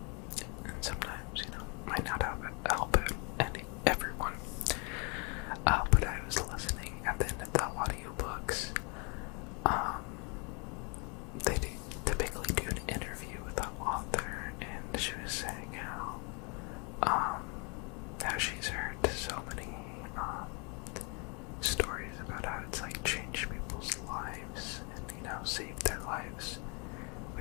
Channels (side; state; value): right; quieter; 33.9 dB